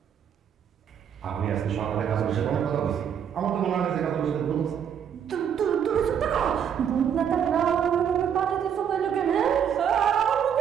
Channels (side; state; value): left; quieter; 8.4 dB